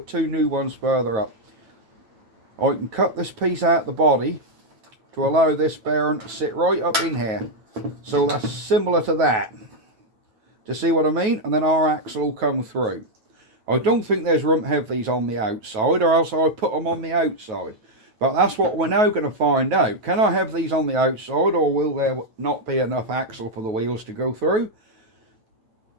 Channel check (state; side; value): late; left; 9.2 ms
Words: two new ones further up. I can cut this piece out of the body to allow this bearing to sit right up in here. So that's similar to that. To see what I mean? And then our axle will come through. I don't think there's room to have these on the outside, or else I would put them on the outside. But that's what we're now going to find out. Can I have these on the outside, or will there not be enough axle for the wheels to go through?